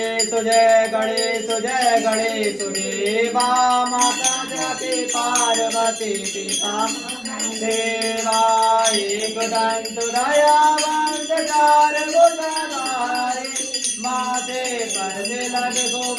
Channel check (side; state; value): both; identical; correlation 1.00